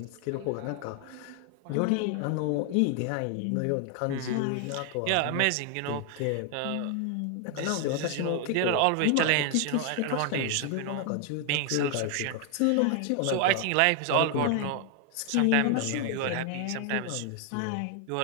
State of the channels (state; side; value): different; both; correlation 0.00